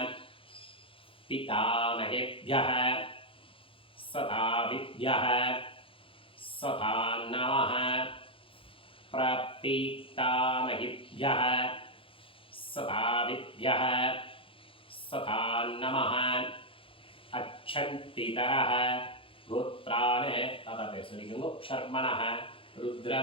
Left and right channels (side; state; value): right; late; 0.26 ms